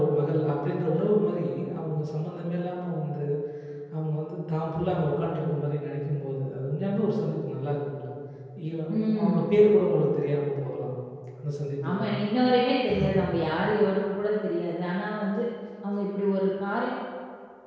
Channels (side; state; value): both; identical; correlation 1.00